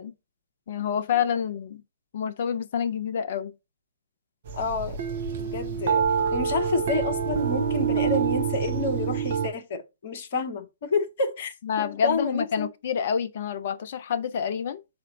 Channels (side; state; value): both; inverted; correlation -0.48